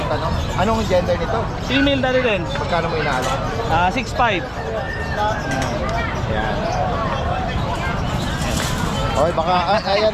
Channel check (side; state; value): both; identical; correlation 1.00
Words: ano? Anong gender nito? Female na rin. Magkano mo inaalo? 6'5". Ayan. Okay, baka, ayan